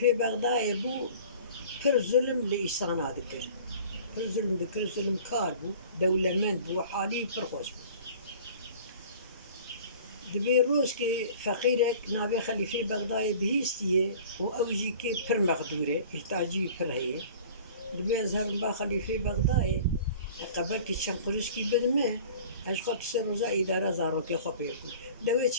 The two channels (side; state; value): both; inverted; correlation -0.45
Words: بغداد بو كر ظلم لإيسان ذكر كر ظلم ذكر ظلم كار بو دولة من بو حالي فرخوش بو دبي روز كي فقيرك نابي خليفة بغداد بهيستيه وأوجي كي پر مقدورة التاجي پر هي دبي أزهر با خليفة بغداد قبل كي تشنقلش كي بدمه اش خاطر سر روزا إدارة زاروكي خبيركو دوي